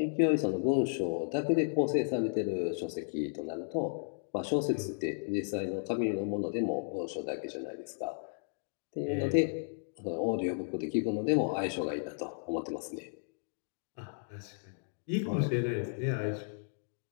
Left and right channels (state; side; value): silent; right; digital silence